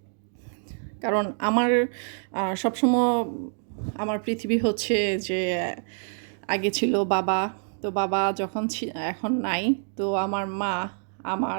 কারণ আমার সবসময় আমার পৃথিবী হচ্ছে যে আগে ছিল বাবা। তো বাবা যখন এখন নাই, তো আমার মা,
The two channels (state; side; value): silent; left; 61 dB below the other